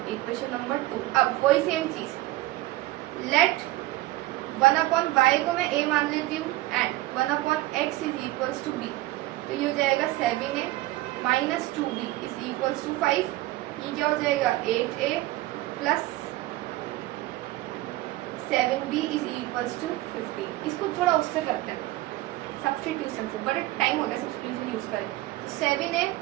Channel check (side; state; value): left; quieter; 17.6 dB